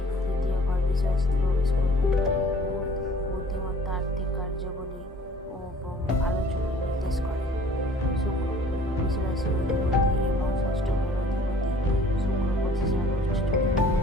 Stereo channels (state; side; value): normal; both; correlation 0.52